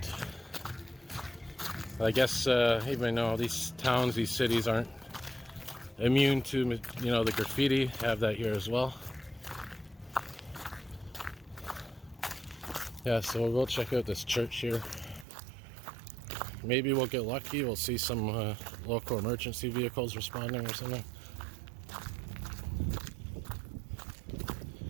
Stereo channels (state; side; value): drops out; left; at 15.2 s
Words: I guess even though these towns, these cities aren't immune to, you know, the graffiti, have that here as well. Yeah, so we'll go check out this church here. Maybe we'll get lucky. We'll see some local emergency vehicles responding or something.